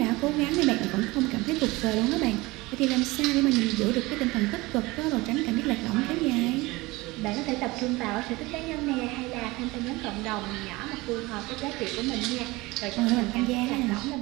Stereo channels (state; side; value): quieter; left; 21.8 dB